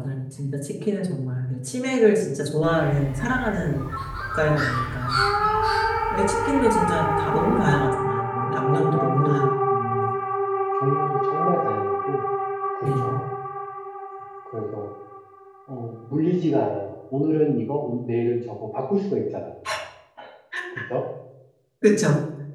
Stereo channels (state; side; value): identical; both; correlation 1.00